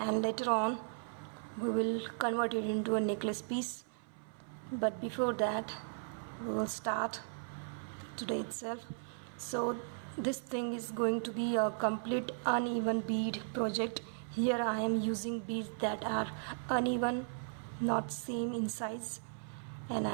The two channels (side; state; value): left; silent; 53 dB below the other